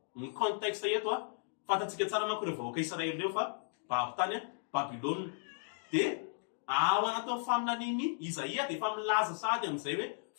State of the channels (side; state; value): right; silent; digital silence